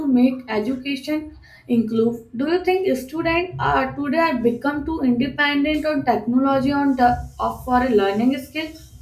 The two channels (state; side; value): identical; both; correlation 1.00